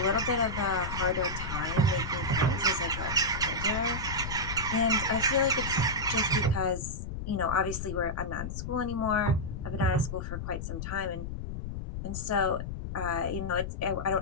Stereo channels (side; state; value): left; noise; rumble, 6 dB below the sound